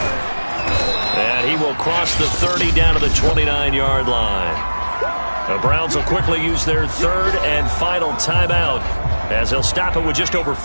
And he will cross the 30 down to the 29-yard line. The Browns will quickly use their 3rd and final timeout as they'll stop it with just over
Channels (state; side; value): inverted; both; correlation -1.00